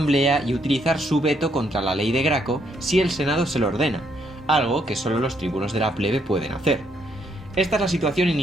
y utilizar su veto contra la ley de Graco si el Senado se lo ordena, algo que solo los tribunos de la plebe pueden hacer. Esta es la situación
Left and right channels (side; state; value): both; normal; correlation 0.73